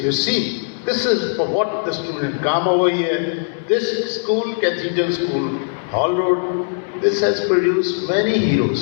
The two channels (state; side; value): silent; right; digital silence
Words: see, this is for what the student come over here. This school, Cathedral School, Hall Road, this has produced many